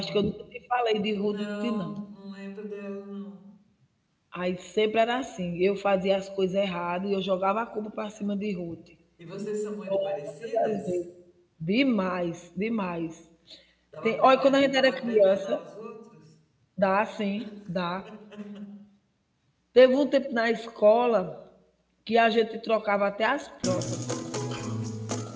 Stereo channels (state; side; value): identical; both; correlation 1.00